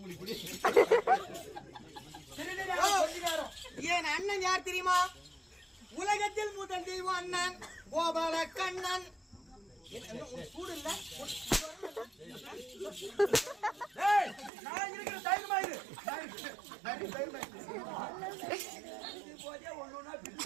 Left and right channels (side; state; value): left; drops out; at 14.5 s